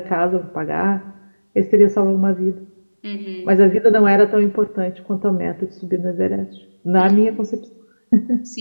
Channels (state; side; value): inverted; both; correlation -1.00